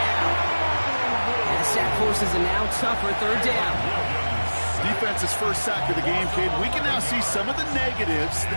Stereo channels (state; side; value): inverted; both; correlation -1.00